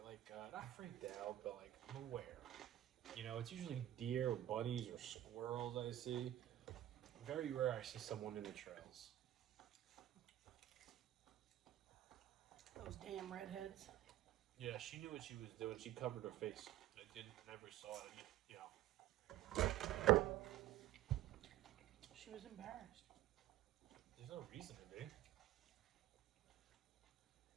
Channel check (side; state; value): left; quieter; 13.7 dB